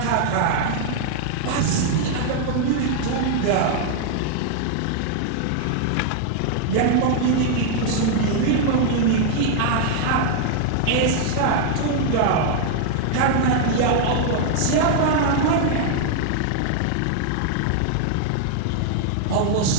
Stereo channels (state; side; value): different; both; correlation 0.00